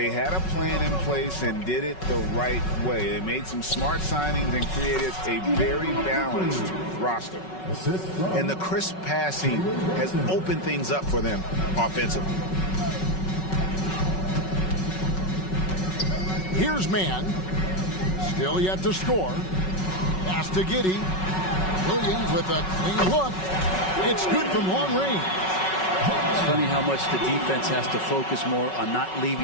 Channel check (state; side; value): late; right; 5.4 ms